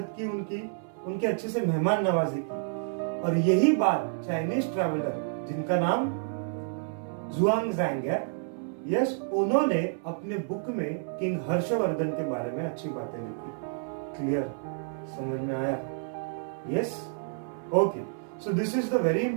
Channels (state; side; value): silent; left; 58 dB below the other